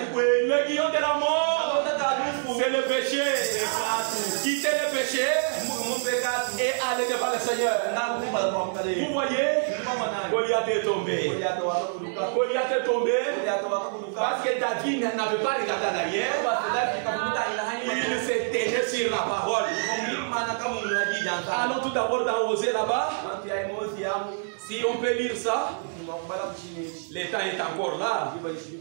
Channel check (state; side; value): silent; left; 55 dB below the other